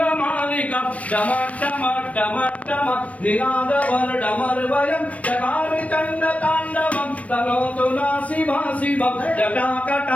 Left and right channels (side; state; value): right; late; 0.066 ms